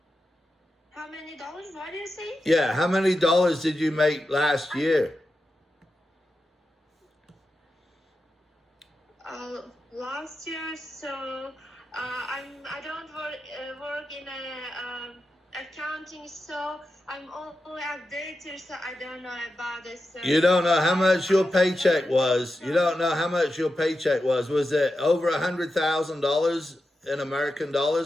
How many dollars? What do you say? Yeah, how many dollars did you make last year? Last year, so I don't work in accounting, so I'm only updated, so I don't know about this. You don't know how much your paycheck was. You don't know how much your paycheck was. Was it over $100,000 in American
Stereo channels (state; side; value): normal; both; correlation 0.90